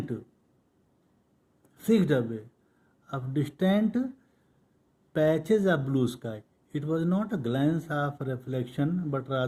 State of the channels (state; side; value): identical; both; correlation 1.00